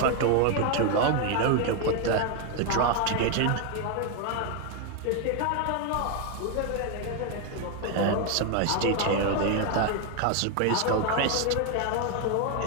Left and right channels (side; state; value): both; different; correlation 0.01